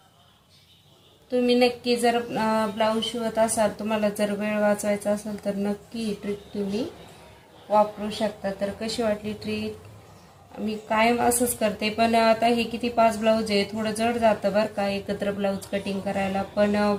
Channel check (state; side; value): identical; both; correlation 1.00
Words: तुम्ही नक्की जर ब्लाऊज शिवत असाल, तुम्हाला जर वेळ वाचवायचा असेल तर नक्की ही ट्रिक तुम्ही वापरू शकता. तर कशी वाटली ट्रिक? मी कायम असंच करते, पण आता हे किती 5 ब्लाऊज आहे, थोडं जड जातं बरं का एकत्र ब्लाऊज कटिंग करायला, पण